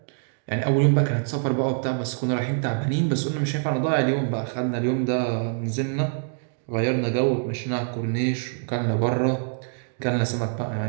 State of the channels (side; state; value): left; silent; digital silence